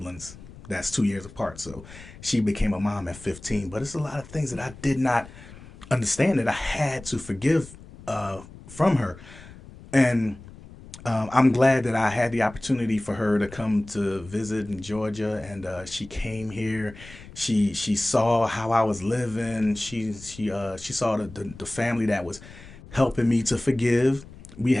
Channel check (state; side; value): noise; left; rumble, 18 dB below the sound